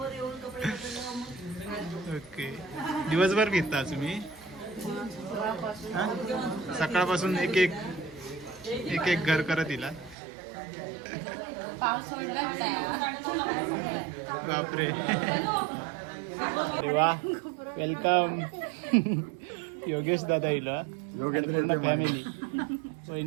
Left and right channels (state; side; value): drops out; left; at 10.2 s